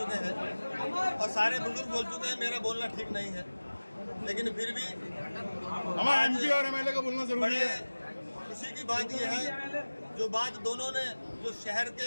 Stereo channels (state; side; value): inverted; both; correlation -1.00